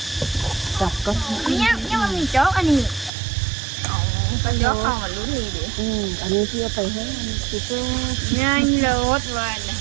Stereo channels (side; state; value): left; drops out; at 3.1 s